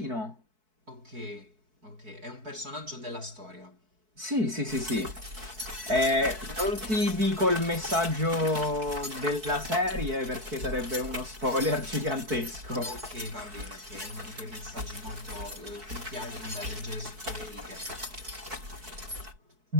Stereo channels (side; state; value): left; late; 4.6 ms